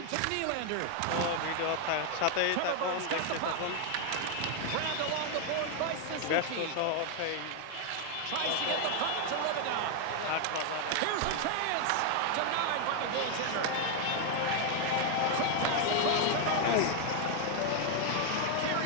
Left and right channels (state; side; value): different; both; correlation 0.00